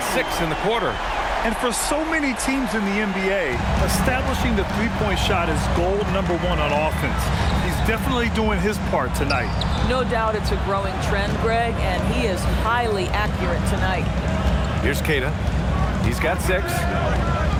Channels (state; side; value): identical; both; correlation 1.00